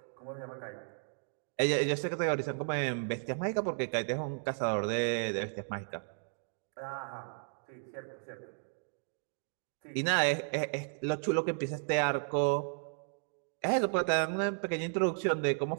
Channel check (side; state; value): left; silent; digital silence